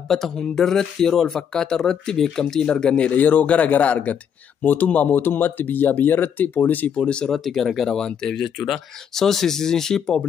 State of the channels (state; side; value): quieter; right; 7.9 dB